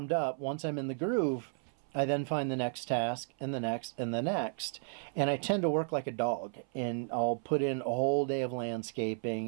up, once I'm in the groove, I then find the next task and the next and the next. And I tend to work like a dog, and I'll put in a whole day of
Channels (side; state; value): left; silent; 55 dB below the other